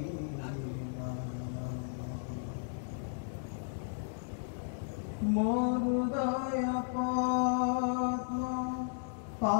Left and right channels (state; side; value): silent; right; digital silence